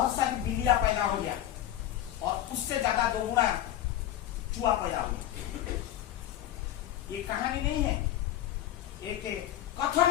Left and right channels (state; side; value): quieter; right; 12.6 dB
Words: सारी बिल्लियां पैदा हो गया और उससे ज्यादा 2 गुना चूहा पैदा हो गया। ये कहानी नहीं है, एक कथन